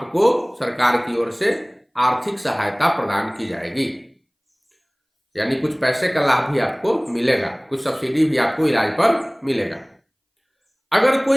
सरकार की ओर से आर्थिक सहायता प्रदान की जाएगी, यानी कुछ पैसे का लाभ भी आपको मिलेगा, कुछ सब्सिडी भी आपको इलाज पर मिलेगा। अगर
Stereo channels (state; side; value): identical; both; correlation 1.00